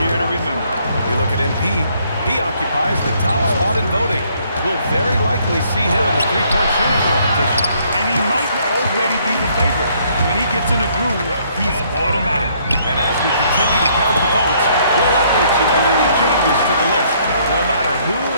year to remember. You look at MP, he occupies the top spot in voting. we'll very likely see him in the three-point shooting competition. And he might already be the favorite. When he gets in a groove, he's automatic. And as we continue to count the votes, we'll update you on any changes to the list. No matter who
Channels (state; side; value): inverted; both; correlation -0.66